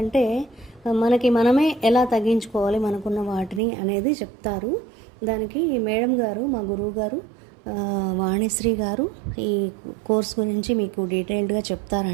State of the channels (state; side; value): drops out; left; at 3.6 s